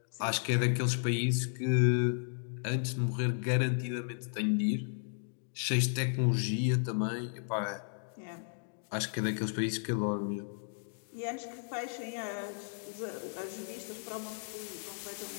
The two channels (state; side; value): silent; right; digital silence